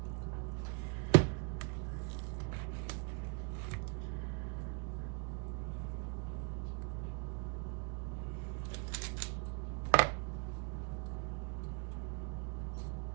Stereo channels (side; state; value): left; quieter; 36.2 dB